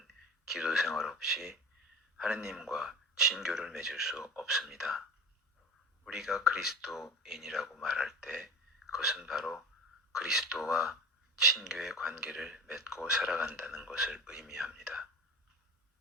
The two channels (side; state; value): both; normal; correlation 0.34